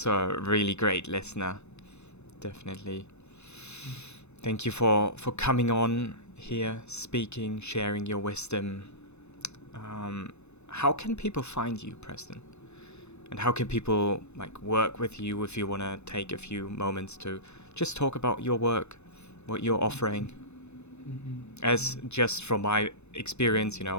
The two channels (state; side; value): late; right; 0.81 ms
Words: a really great listener. Definitely. Thank you for coming on here, speaking, sharing your wisdom. How can people find you, Preston? And how can people work with you if you want to take a few moments to just talk about your work, what you're offering? As just from my experience,